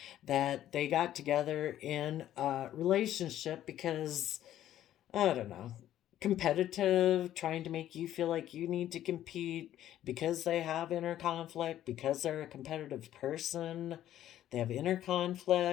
that they got together in a relationship because, I don't know, competitive, trying to make you feel like you need to compete because they have inner conflict, because they're a competitive person. They have inner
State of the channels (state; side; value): quieter; right; 12.2 dB